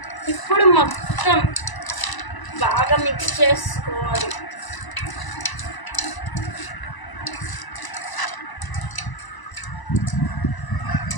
ఇప్పుడు మొత్తం బాగా మిక్స్ చేసుకోవాలి.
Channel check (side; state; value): right; late; 1.0 ms